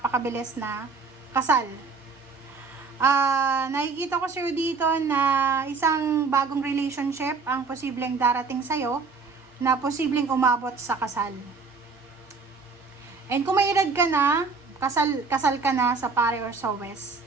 na kasal. Nakikita ko sa'yo dito na isang bagong relationship ang posibleng darating sa'yo na posibleng umabot sa kasal. And kung may edad ka na, kasal ka na sa pare or sa west,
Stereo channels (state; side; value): quieter; left; 4.7 dB